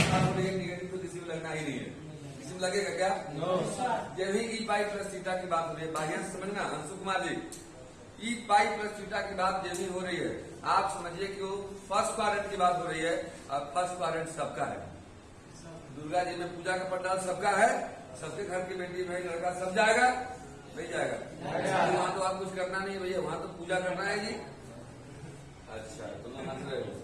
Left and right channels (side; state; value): both; identical; correlation 1.00